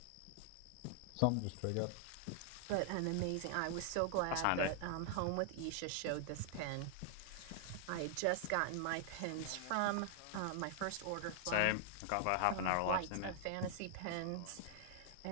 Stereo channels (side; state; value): both; different; correlation 0.00